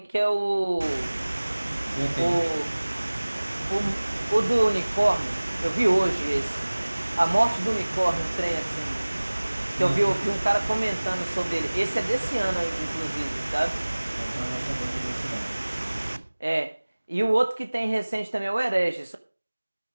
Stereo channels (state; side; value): inverted; both; correlation -1.00